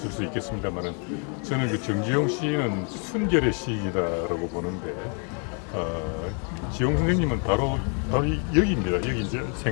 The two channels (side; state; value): right; quieter; 39.1 dB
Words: 수 있겠습니다만은 저는 그 정지용 시인은 순결의 시인이다라고 보는데 지용 선생님은 바로 여기입니다. 여기 이제